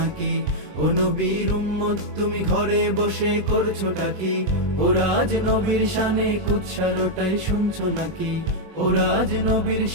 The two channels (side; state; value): left; late; 20 ms